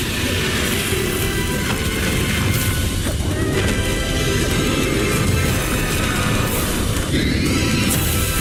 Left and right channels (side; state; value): both; identical; correlation 1.00